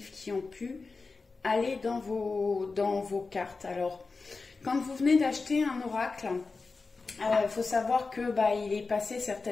qui ont pu aller dans vos cartes. Alors, quand vous venez d'acheter un oracle, il faut savoir que il est passé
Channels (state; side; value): quieter; right; 4.1 dB